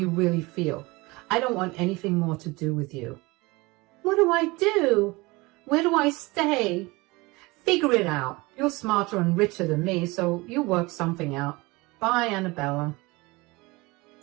really feel. I don't want anything more to do with you. What do I do? Where do I stay? Figure it out. You're smarter and richer than me, so you work something out. Bye, Annabella.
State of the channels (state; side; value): quieter; left; 23.4 dB